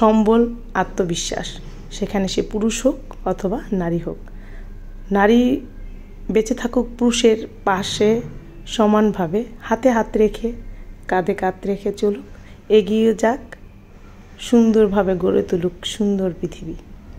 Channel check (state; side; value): identical; both; correlation 1.00